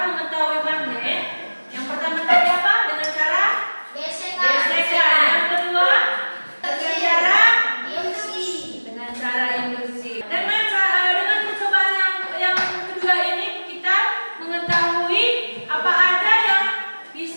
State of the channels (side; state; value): both; inverted; correlation -1.00